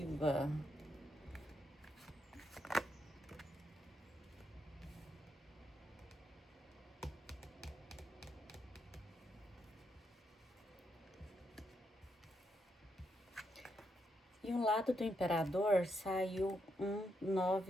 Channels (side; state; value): both; normal; correlation 0.80